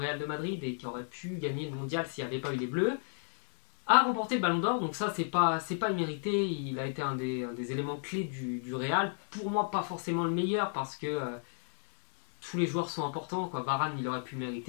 de Madrid et qui aurait pu gagner le mondial s'il n'y avait pas eu les Bleus, a remporté le Ballon d'Or, donc ça c'est pas immérité, il a été un des éléments clés du Real. Pour moi pas forcément le meilleur parce que tous les joueurs sont importants, quoi. Varane il aurait pu le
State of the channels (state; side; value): silent; right; 56 dB below the other